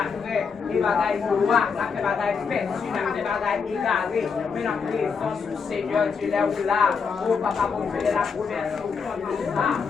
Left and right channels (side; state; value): right; quieter; 5.7 dB